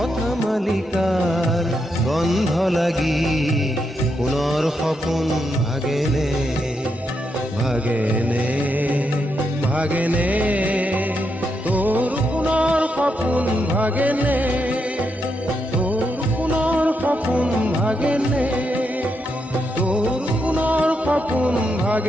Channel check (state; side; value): normal; both; correlation 0.82